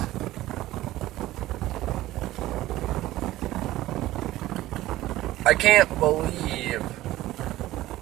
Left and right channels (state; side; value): quieter; left; 16.0 dB